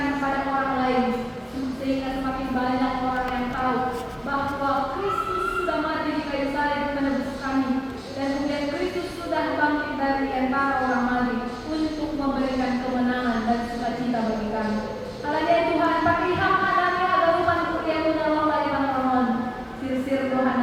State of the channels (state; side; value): identical; both; correlation 1.00